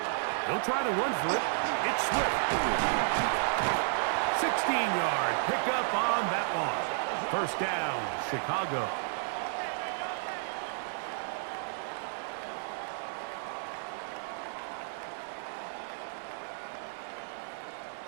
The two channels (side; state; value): left; silent; 56 dB below the other